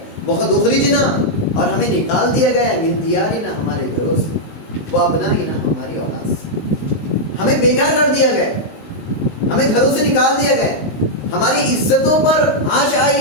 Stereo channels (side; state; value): right; late; 19 ms